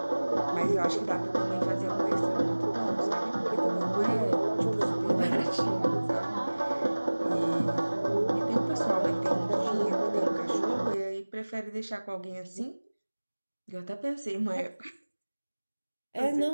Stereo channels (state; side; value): inverted; both; correlation -1.00